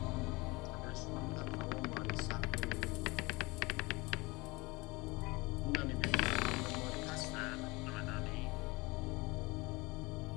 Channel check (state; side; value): quieter; right; 24.2 dB